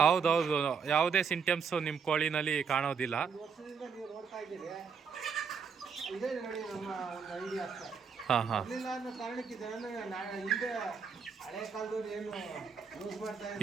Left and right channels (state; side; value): quieter; left; 6.1 dB